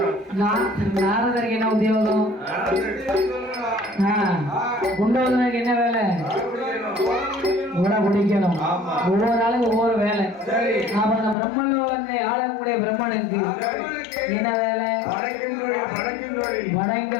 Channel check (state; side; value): drops out; right; at 11.4 s